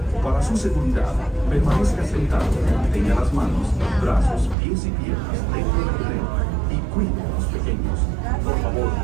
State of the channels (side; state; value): left; drops out; at 4.5 s